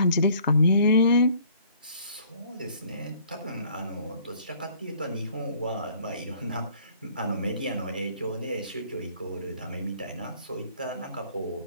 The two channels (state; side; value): inverted; both; correlation -0.57